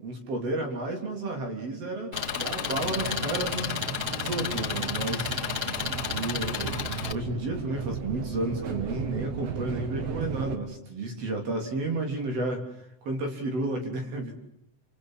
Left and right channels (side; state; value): left; late; 7.8 ms